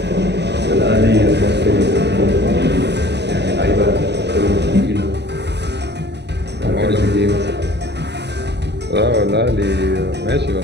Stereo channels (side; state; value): left; late; 0.50 ms